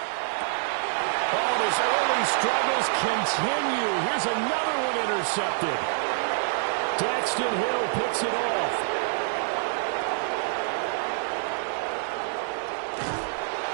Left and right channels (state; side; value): silent; left; 59 dB below the other